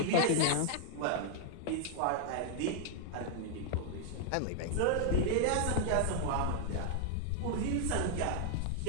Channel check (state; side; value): different; both; correlation 0.00